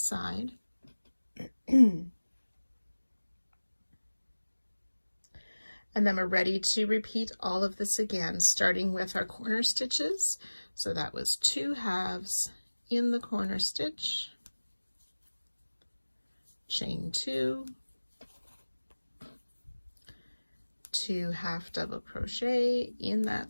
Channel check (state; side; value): inverted; both; correlation -1.00